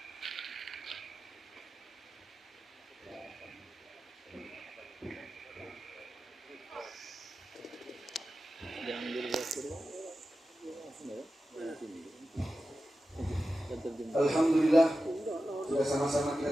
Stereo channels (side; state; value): both; normal; correlation 0.93